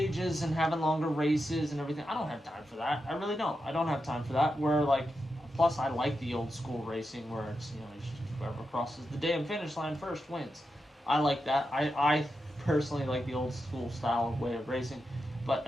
and having longer races and everything? I don't have time for that. I really don't. I don't have time for that. Where like, plus I like the old school racing where it's, you know, it's just whoever crosses the damn finish line first wins. I like that. I personally like the old school style of way of racing, but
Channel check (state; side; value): normal; both; correlation 0.88